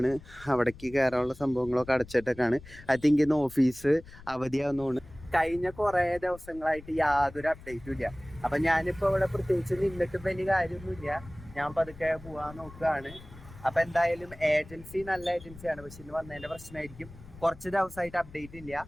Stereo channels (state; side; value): noise; left; rumble, 19 dB below the sound